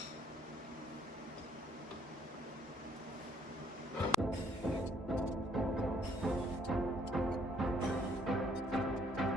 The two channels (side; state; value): both; normal; correlation 0.66